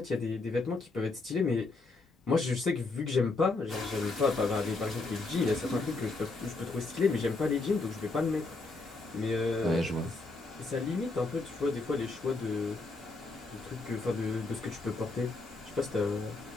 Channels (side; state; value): right; quieter; 3.5 dB